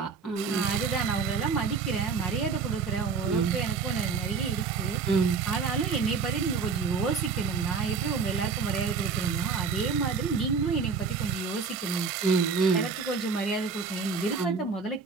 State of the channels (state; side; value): quieter; left; 5.3 dB